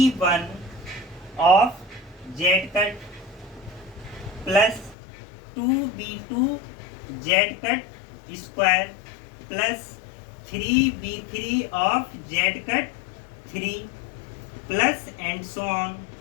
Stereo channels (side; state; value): right; drops out; at 5.0 s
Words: of Z cut plus 2B2 Z cut square plus 3B3 of Z cut 3 plus and so on.